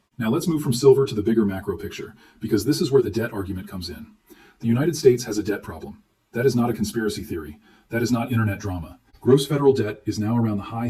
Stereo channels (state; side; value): identical; both; correlation 1.00